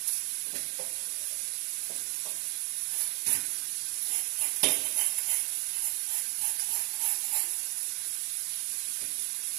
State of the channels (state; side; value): quieter; left; 30.7 dB